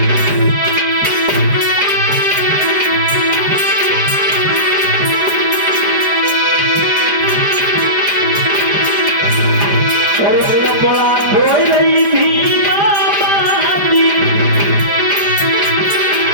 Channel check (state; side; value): late; left; 5.0 ms